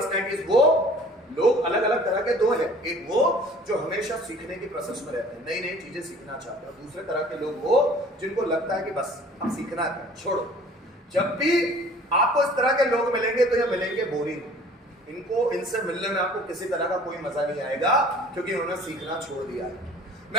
वो लोग अलग अलग तरह के दो है, एक वो जो हमेशा सीखने की प्रोसेस में रहते हैं, नई नई चीजें सीखना चाहते हैं, और दूसरे तरह के लोग वो जिनको लगता है कि बस अब सीखना है, छोड़ो। जब भी आपको इस तरह के लोग मिलेंगे तो ये मिलेंगे बोरिंग, इनको इनसे मिलने में आपको किसी तरह का कोई मजा नहीं आएगा क्योंकि उन्होंने सीखना छोड़ दिया है।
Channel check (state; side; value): normal; both; correlation 0.50